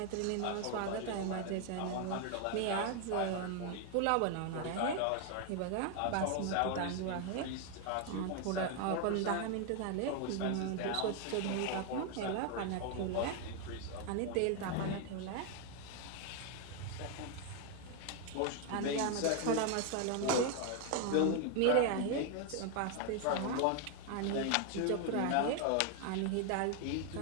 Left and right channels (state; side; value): different; both; correlation 0.00